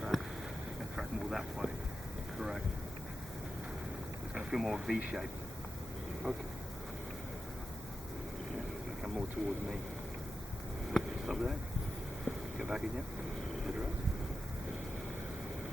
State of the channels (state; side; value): normal; both; correlation 0.92